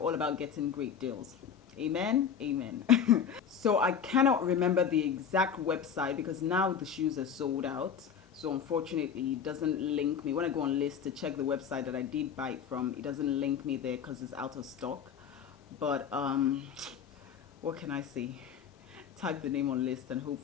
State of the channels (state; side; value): quieter; right; 7.5 dB